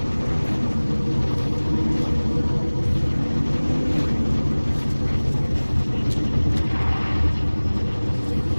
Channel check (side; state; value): both; inverted; correlation -1.00